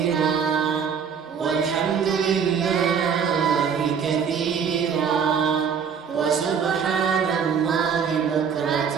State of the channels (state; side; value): quieter; left; 6.9 dB